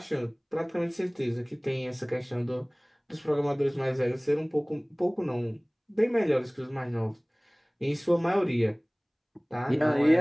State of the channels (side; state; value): both; identical; correlation 1.00